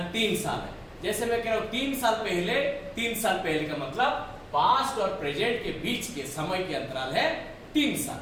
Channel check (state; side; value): identical; both; correlation 1.00